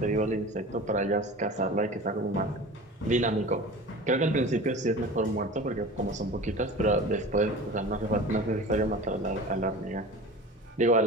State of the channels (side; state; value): both; normal; correlation 0.36